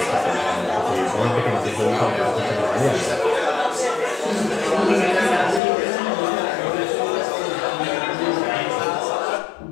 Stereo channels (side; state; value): right; drops out; at 5.6 s